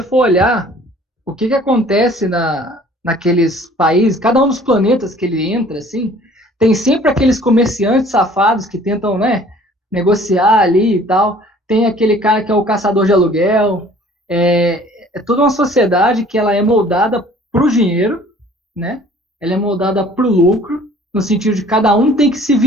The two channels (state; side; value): normal; both; correlation 0.52